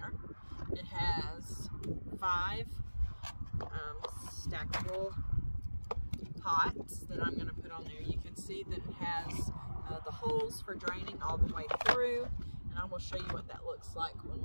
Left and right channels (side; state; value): both; inverted; correlation -1.00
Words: It has 5 stackable pots that I'm going to put on there. You can see that it has the holes for draining all the way through, and I will show you what that looks like when